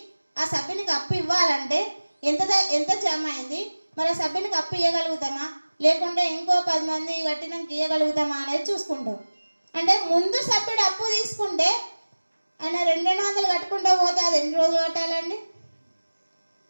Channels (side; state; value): both; inverted; correlation -1.00